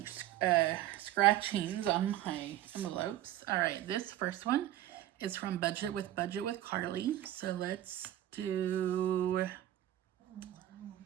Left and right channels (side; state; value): left; quieter; 13.3 dB